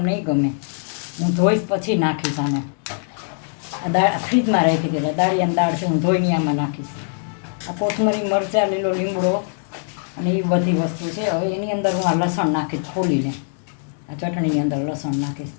ગમે, હું ધોઈશ પછી નાખીશ આને. આ દાળ ફ્રીજમાં રાખી હતી, દાળિયાની દાળ છે, હું ધોઈને આમાં નાખીશ. આ કોથમરી મરચાં, લીલો લીમડો અને એ બધી વસ્તુ છે. હવે એની અંદર હું આ લસણ નાખીશ ખોલીને, આ ચટણીની અંદર લસણ નાખીશ,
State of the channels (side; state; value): right; silent; digital silence